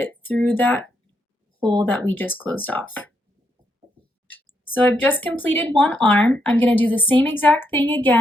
through that hole that we just closed off. So I've just completed one arm. I'm going to do the same exact thing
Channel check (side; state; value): both; normal; correlation 0.78